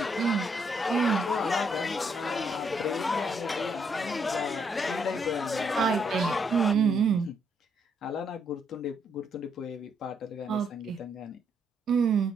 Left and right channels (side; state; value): both; normal; correlation 0.74